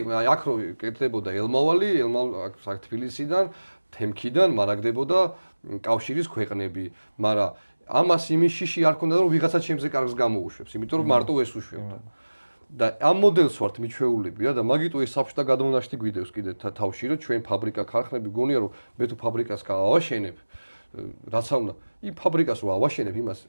აი აქ რო კეთდებოდა ელმავალი, აქ თბილისიდან, თემქიდან მარაგდებოდა კავშირის ქვეყნები, მაგრამ ამას იმის შიში არ ქონდა, რომ ვიღაცა ჩემზე კარგს გამოუშვებს, იმიტომ რომ მარტო ეს უშვებდა. და ამ მოდელს ვართ მიჩვეულები რა და მაგიტო ეს საბჭოთა გადმონაშთი გვიდევს კიდე თავში რომ ჩვენ ფაბრიკა ქარხნები გონია რომ მე თუ ფაბრიკას გავავაშენებ რაცა უნდა იმ ფაბრიკას რო ავაშენებ იმას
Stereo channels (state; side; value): inverted; both; correlation -1.00